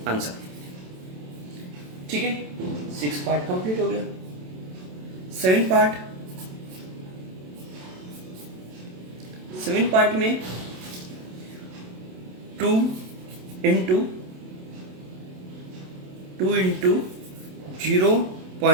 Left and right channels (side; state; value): left; late; 27 ms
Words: आंसर। ठीक है 6 पार्ट कंप्लीट हो गया। 7 पार्ट में 2 इंटू